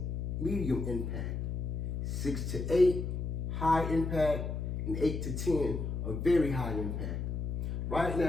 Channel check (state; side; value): noise; left; hum, 3 dB below the sound